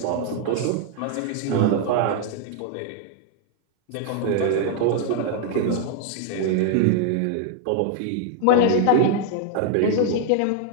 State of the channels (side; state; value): both; different; correlation 0.00